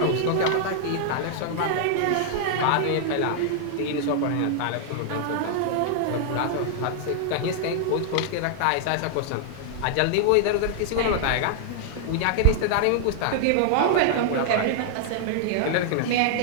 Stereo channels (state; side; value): different; both; correlation -0.01